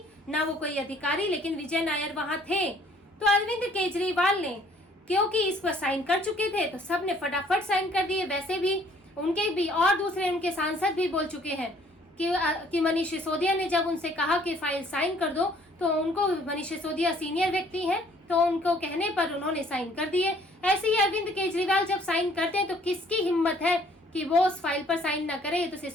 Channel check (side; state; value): both; normal; correlation 0.59